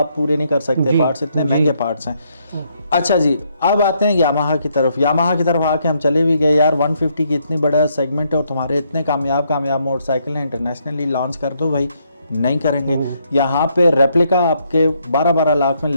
पूरे नहीं कर सकते पार्ट्स, इतने महंगे पार्ट्स हैं। अच्छा जी, अब आते हैं यामाहा की तरफ। यामाहा की तरफ आके हम चले भी गए यार, 150 की इतनी बड़ा सेगमेंट है और तुम्हारे इतने कामयाब मोटरसाइकिल हैं, इंटरनेशनली लॉन्च कर दो भाई। नहीं करेंगे। यहाँ पे रेप्लिका आपके 12-12 लाख में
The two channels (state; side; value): inverted; both; correlation -0.73